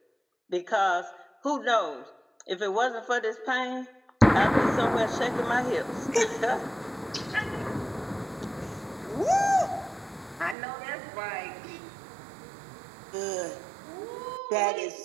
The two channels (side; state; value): left; drops out; at 10.6 s